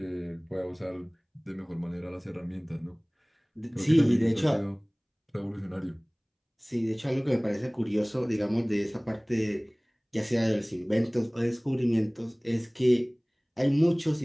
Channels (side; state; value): both; identical; correlation 1.00